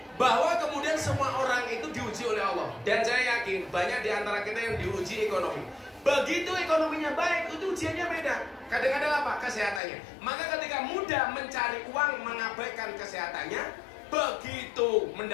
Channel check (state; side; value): drops out; right; at 9.8 s